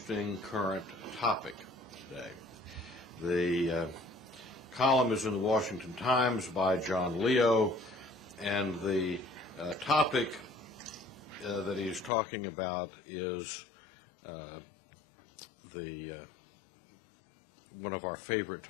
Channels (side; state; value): right; drops out; at 12.1 s